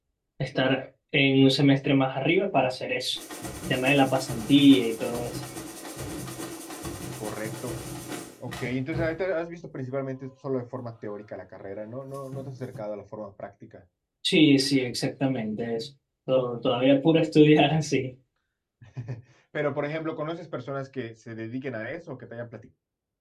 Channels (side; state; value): both; identical; correlation 1.00